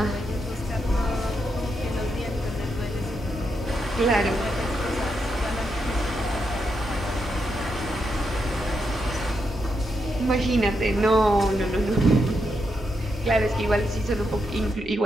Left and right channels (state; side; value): normal; both; correlation 0.82